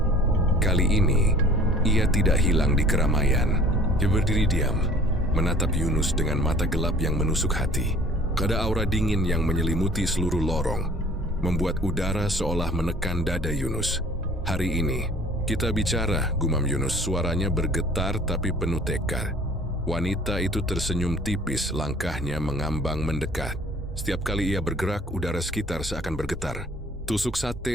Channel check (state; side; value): normal; both; correlation 0.50